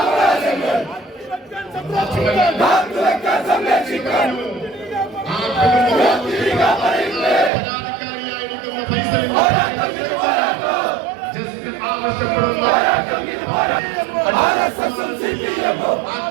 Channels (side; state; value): left; drops out; at 7.5 s